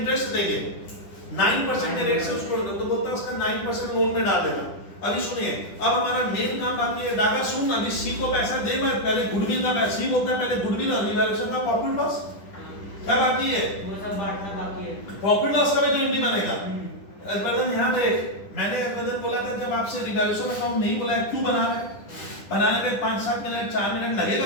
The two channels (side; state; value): right; late; 10 ms